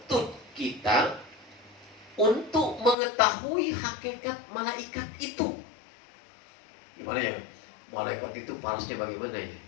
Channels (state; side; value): drops out; right; at 3.0 s